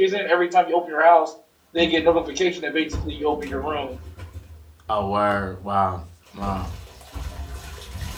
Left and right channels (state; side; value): identical; both; correlation 1.00